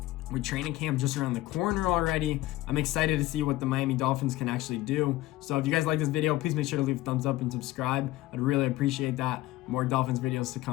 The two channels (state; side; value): quieter; right; 16.8 dB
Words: With training camp just around the corner already, I'm excited to see what the Miami Dolphins can actually do. So if you guys like this video, please make sure to leave a thumbs up and subscribe. I'd really appreciate that. More Dolphins videos to